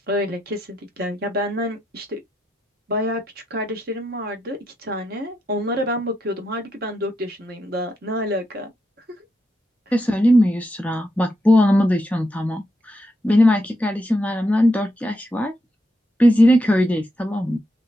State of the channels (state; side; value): normal; both; correlation 0.83